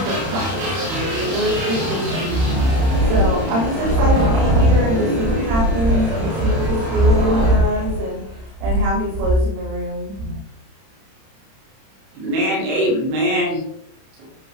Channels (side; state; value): left; late; 31 ms